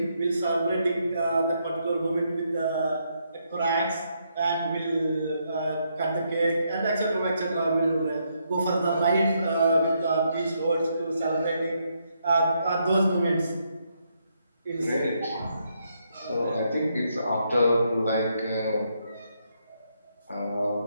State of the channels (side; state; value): both; inverted; correlation -0.77